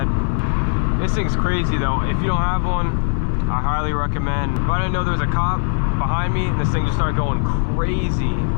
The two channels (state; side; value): silent; right; 59 dB below the other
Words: This thing's crazy though. If you don't have one, I highly recommend. If I didn't know there was a cop behind me, and this thing just started going crazy.